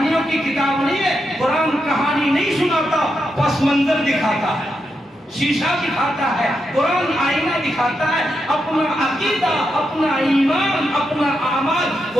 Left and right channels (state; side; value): normal; both; correlation 0.84